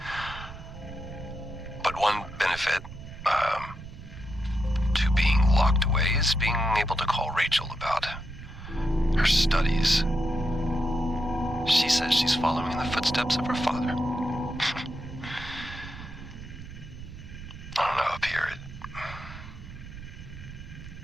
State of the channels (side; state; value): right; noise; rumble, 13 dB below the sound